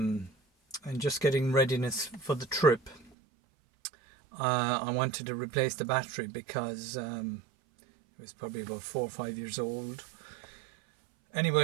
just getting readiness for the trip. I wanted to replace the battery because it was probably about 4 or 5 years old.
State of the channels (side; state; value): left; drops out; at 3.1 s